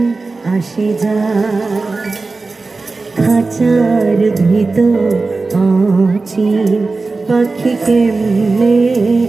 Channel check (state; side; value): quieter; left; 3.7 dB